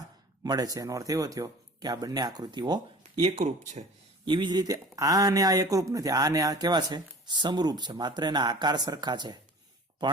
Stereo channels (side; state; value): both; normal; correlation 0.43